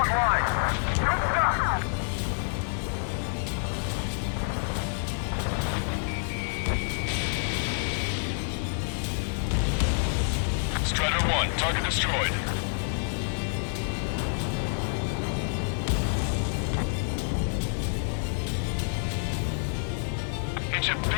line. Good stuff. Strider 1, target destroyed. It's a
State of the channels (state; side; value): silent; right; digital silence